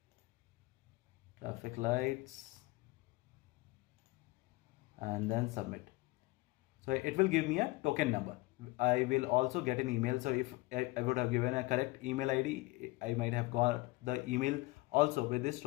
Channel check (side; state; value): right; quieter; 21.1 dB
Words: traffic lights, and then submit. So it will give me a token number. I will also get an email. So if I would have given a correct email ID, I might have got the email also with this